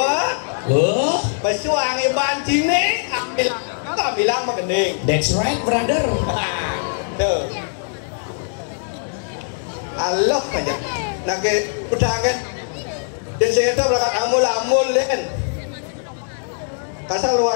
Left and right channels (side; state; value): right; silent; 65 dB below the other